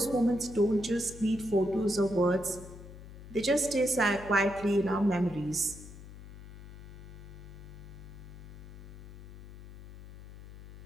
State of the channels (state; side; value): noise; left; hum, 14 dB below the sound